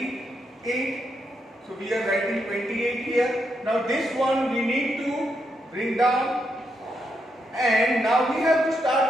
So we are writing 28 here. Now this one we need to bring down, and now we have to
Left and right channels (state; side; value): normal; both; correlation 0.81